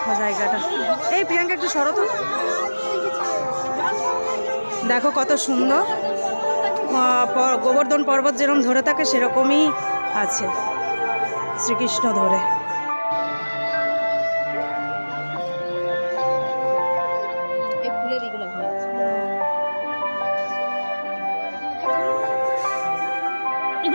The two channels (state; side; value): inverted; both; correlation -1.00